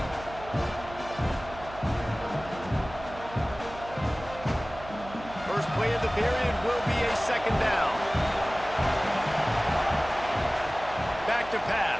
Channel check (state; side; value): noise; right; hum, 15 dB below the sound